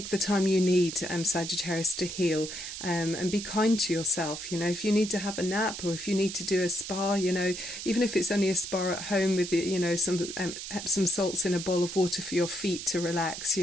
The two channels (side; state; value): right; noise; hiss, 8 dB below the sound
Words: the time you need, Sagittarius, to heal, and be kind to yourself. You know, if you need to have a nap, or if you need to do a spa, you know, even if it's only a spa at home with, you know, some Epsom salts in a bowl of water for your feet to relax,